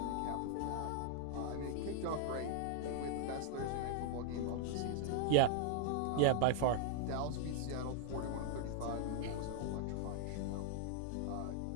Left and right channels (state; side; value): different; both; correlation 0.00